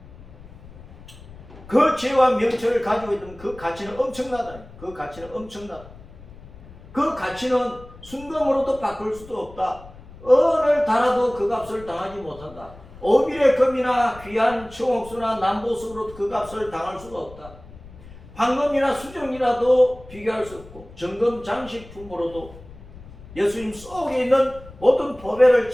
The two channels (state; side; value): noise; left; rumble, 19 dB below the sound